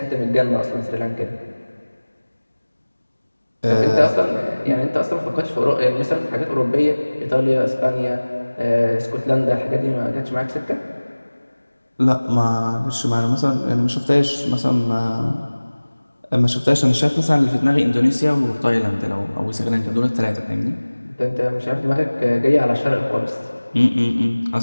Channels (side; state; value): both; inverted; correlation -1.00